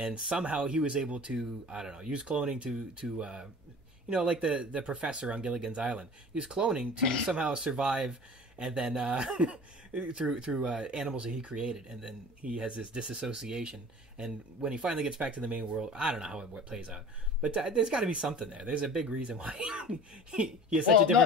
somehow he was able to, I don't know, use cloning to like the professor on Gilligan's Island. He was cloning to somehow survive, and then through animals that he created. And then he has this disassociation. And when he finally gets back to the main world, I don't know how it plays out. But there's got to be something there. There's a big reason why he has such a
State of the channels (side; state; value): both; normal; correlation 0.41